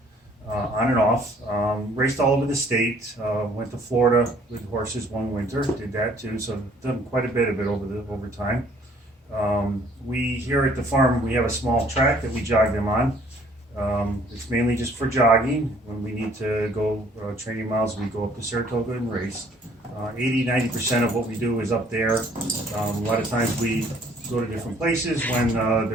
on and off. Raced all over the state. Went to Florida with horses one winter. Did that too. So I've done quite a bit of it over time. We here at the farm, we have a small track that we jog them on. It's mainly just for jogging. When we need to go training miles, we go up to Saratoga and race. 80–90% of what we do is up there. A lot of times we go to different places when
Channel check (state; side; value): normal; both; correlation 0.59